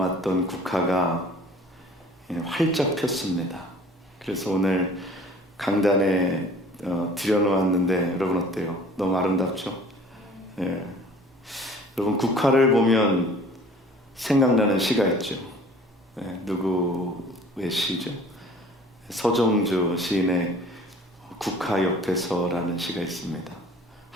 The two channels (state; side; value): normal; both; correlation 0.50